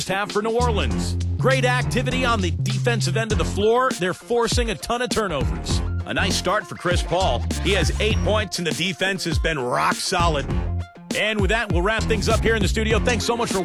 half for New Orleans. Great activity on the defensive end of the floor. They're forcing a ton of turnovers. A nice start for Chris Paul. He has 8 points, and the defense has been rock solid. And with that, we'll wrap things up here in the studio. Thanks so much for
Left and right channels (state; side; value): identical; both; correlation 1.00